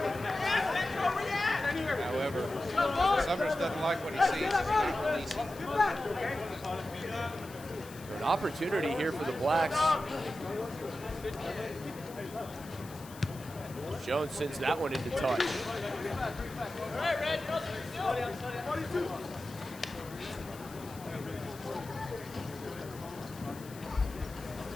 However, Summers doesn't like what he sees. An opportunity here for the Blacks. Jones sends that one into touch.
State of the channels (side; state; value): left; noise; hiss, 18 dB below the sound